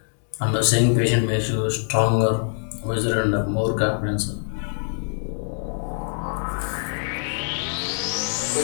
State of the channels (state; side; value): silent; right; digital silence